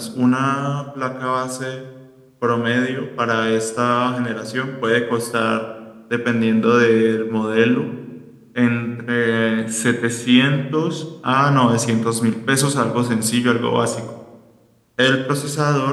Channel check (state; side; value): identical; both; correlation 1.00